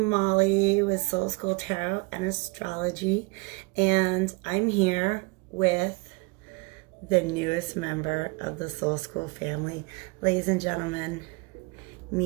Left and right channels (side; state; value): left; quieter; 28.8 dB